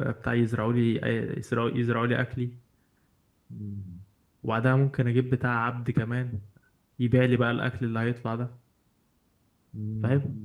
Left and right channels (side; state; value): both; identical; correlation 1.00